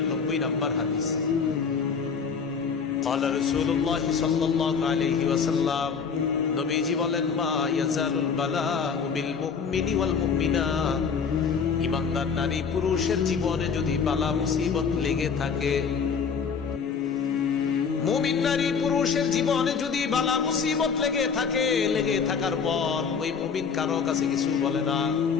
নম্বর হাদিস। قال رسول الله صلى الله عليه وسلم, নবীজি বলেন, মা ইয়াজালুল বালাউ বিল মুমিনি ওয়াল মুমিনাত, ঈমানদার নারী পুরুষের জীবনে যদি বালা মুসিবত লেগে থাকে, মুমিন নারী পুরুষের জীবনে যদি বালা মুসিবত লেগে থাকে, লেগে থাকার পর ওই মুমিন কারো কাছে কিছু বলে না।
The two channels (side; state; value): right; quieter; 6.0 dB